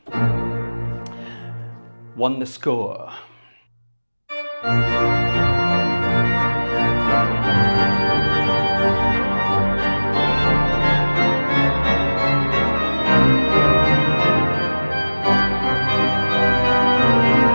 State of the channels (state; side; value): inverted; both; correlation -1.00